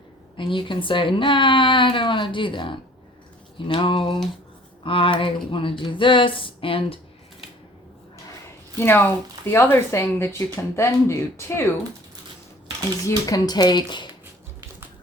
and you can say, nah, I don't want to do that. You know, I want to do this. And, you know, the other thing that you can then do too is you can take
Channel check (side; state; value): both; normal; correlation 0.52